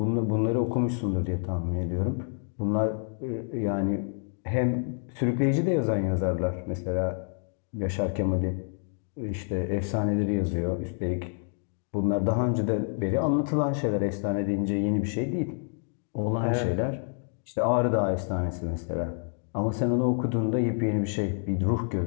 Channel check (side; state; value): right; silent; 57 dB below the other